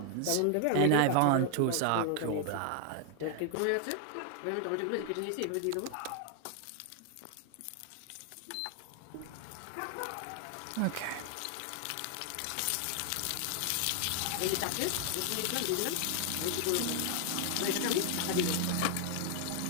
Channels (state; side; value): different; both; correlation 0.00